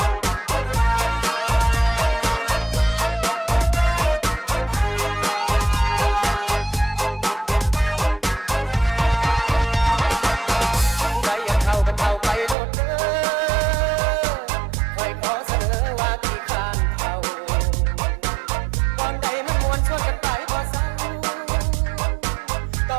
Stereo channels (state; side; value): drops out; left; at 12.6 s